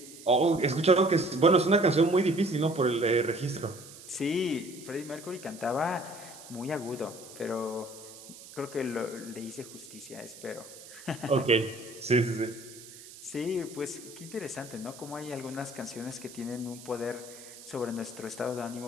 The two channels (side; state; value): right; noise; hiss, 17 dB below the sound